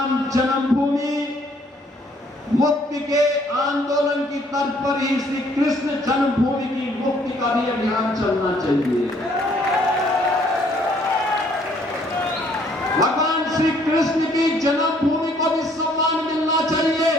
जन्मभूमि मुक्ति के आंदोलन की तर्ज पर ही श्री कृष्ण जन्मभूमि की मुक्ति का भी अभियान चलना चाहिए। भगवान श्री कृष्ण की जन्मभूमि को भी सम्मान मिलना चाहिए।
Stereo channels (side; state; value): both; normal; correlation 0.63